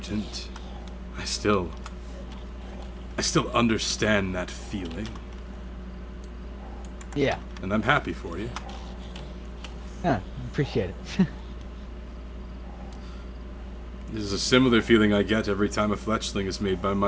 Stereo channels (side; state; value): both; identical; correlation 1.00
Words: I still understand that feeling, Yeah, and I'm happy for you. appreciate it. This is a similar feeling I get every time a fletchling is made by